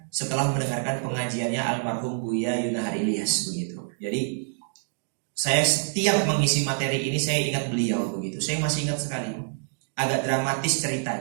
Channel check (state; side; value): silent; left; digital silence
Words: setelah mendengarkan pengajiannya almarhum Buya Yunahar Ilyas begitu. Jadi saya setiap mengisi materi ini saya ingat beliau begitu. Saya masih ingat sekali. Agak dramatis